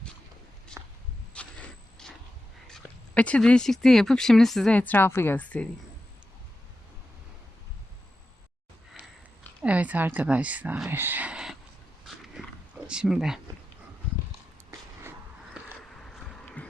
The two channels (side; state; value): both; normal; correlation 0.91